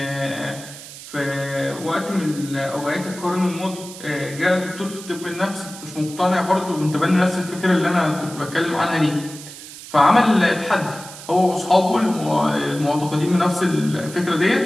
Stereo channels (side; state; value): right; noise; hiss, 15 dB below the sound